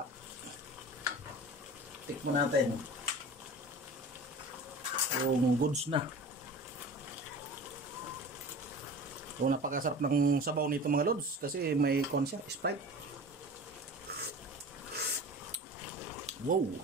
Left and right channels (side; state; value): both; normal; correlation 0.37